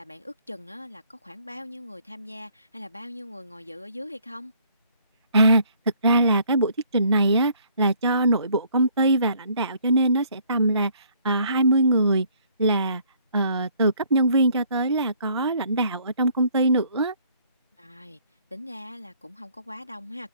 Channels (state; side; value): inverted; both; correlation -0.62